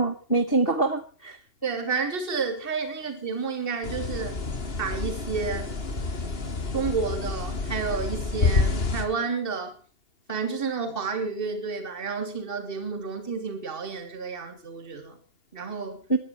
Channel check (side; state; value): right; late; 2.7 ms